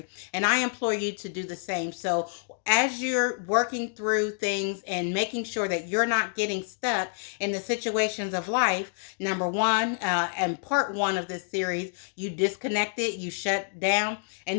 and I implore you to do the same. So as you're working through things and making sure that you're not getting stuck in the situations of life, number one, and part one of this series, you disconnected, you shut down, and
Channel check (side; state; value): right; silent; digital silence